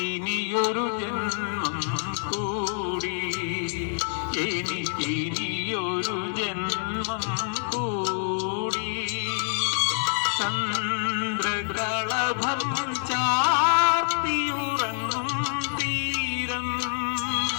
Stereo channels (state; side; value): silent; right; digital silence